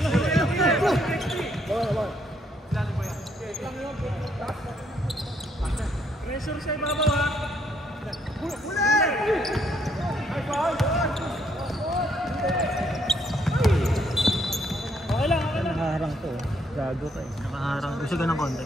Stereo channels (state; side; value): normal; both; correlation 0.71